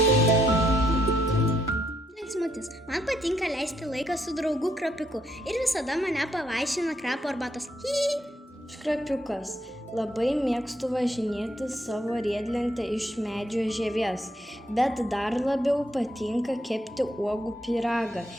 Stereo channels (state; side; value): normal; both; correlation 0.74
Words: Linksmutis. Man patinka leisti laiką su draugu Krapiuku ir visada mane pavaišina krapo arbatos. Aš Krapiukas. Labai mėgstu važinėti savo riedlentę iš medžio žievės, bet dar labiau patinka kepti uogų pyragą.